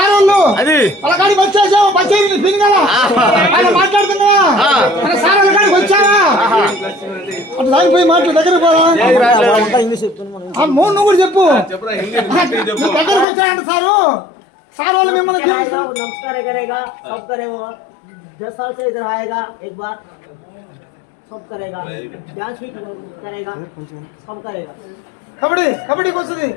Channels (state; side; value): drops out; right; at 13.2 s